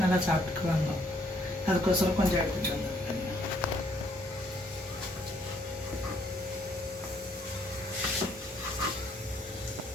நல்லா சாப்பிட்டுக்குவாங்க. அதுக்கோசரம் கொஞ்சம் எடுத்துகிட்டு வந்திருக்கேன்.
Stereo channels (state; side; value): normal; both; correlation 0.68